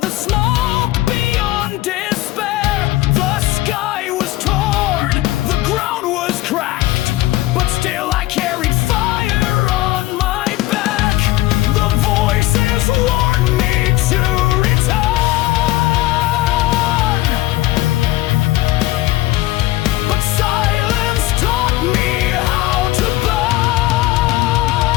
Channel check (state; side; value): quieter; right; 17.4 dB